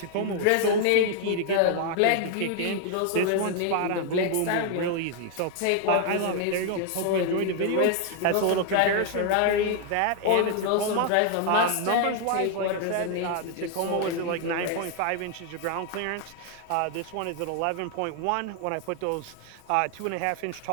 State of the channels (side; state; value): both; different; correlation 0.00